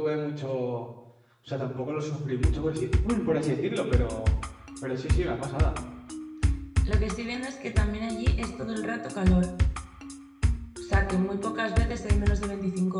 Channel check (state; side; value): identical; both; correlation 1.00